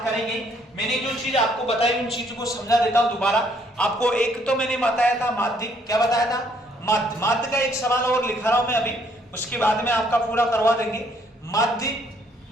करेंगे, मैंने जो चीज आपको बताई उन चीजों को समझा देता हूं दोबारा आपको। एक तो मैंने बताया था माध्य, क्या बताया था? माध्य। माध्य का एक सवाल और लिखा रहा हूं मैं अभी, उसके बाद में आपका पूरा करवा देंगे। माध्य,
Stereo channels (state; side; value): normal; both; correlation 0.66